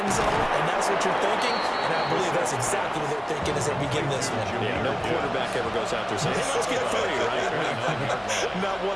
zone, and that's what you're thinking, and I believe that's exactly what they're thinking as they begin this one. Yeah, no quarterback ever goes out there saying, hey, let's get 3, right? Not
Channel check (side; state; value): both; identical; correlation 1.00